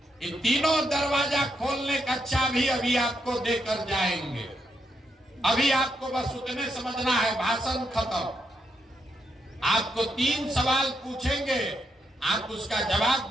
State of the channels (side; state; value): both; normal; correlation 0.80